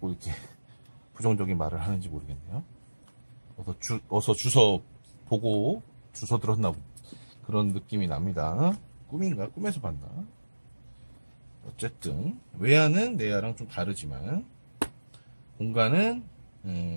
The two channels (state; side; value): inverted; both; correlation -1.00